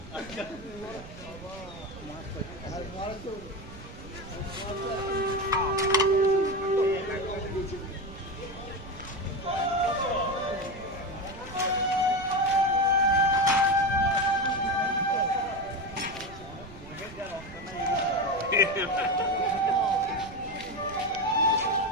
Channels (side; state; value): right; noise; rumble, 17 dB below the sound